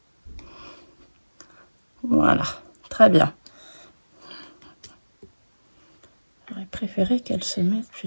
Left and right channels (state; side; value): inverted; both; correlation -1.00